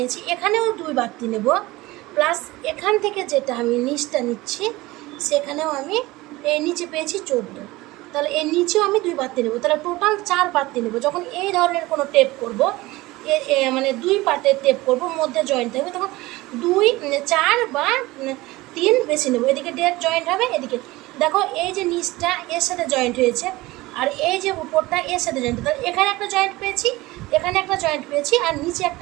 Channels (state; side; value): quieter; left; 19.8 dB